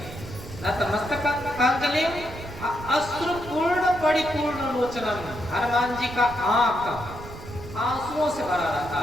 नतमस्तकांजलि अश्रुपूर्ण परिपूर्ण लोचनम। हनुमान जी का आंख आंसुओं से भरा रहता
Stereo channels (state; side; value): noise; right; rumble, 13 dB below the sound